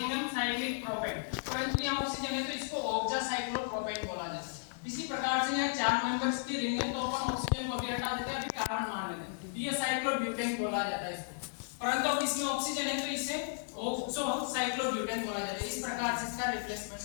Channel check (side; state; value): right; silent; digital silence